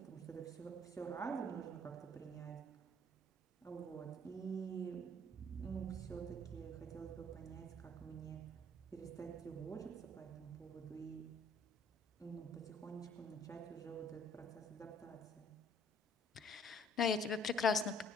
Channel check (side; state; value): both; normal; correlation 0.58